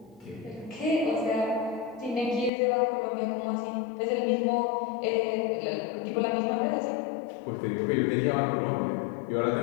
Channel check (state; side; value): drops out; right; at 2.5 s